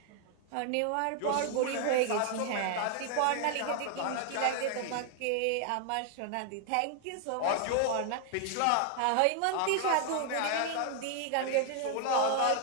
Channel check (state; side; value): different; both; correlation 0.00